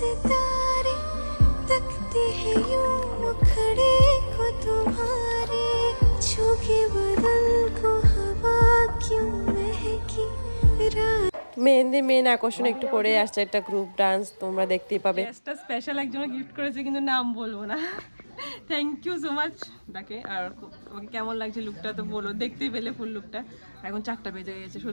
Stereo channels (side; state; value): both; inverted; correlation -1.00